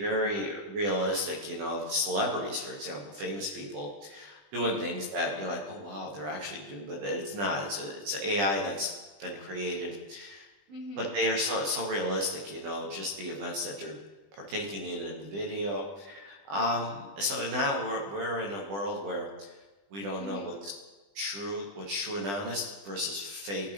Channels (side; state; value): left; late; 20 ms